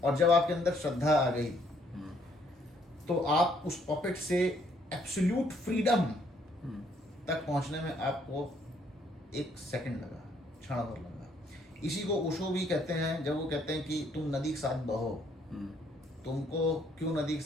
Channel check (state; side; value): normal; both; correlation 0.67